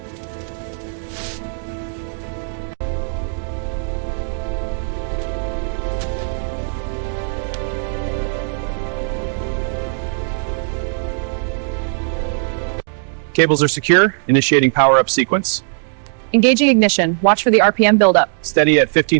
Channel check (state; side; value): silent; left; digital silence